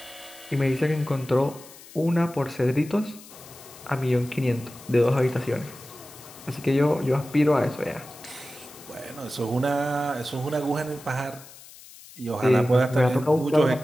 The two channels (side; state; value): left; noise; hiss, 19 dB below the sound